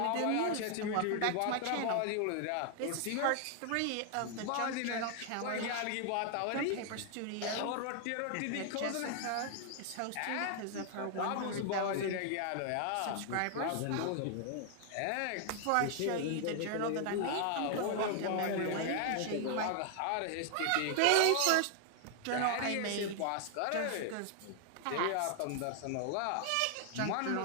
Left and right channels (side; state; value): both; different; correlation 0.00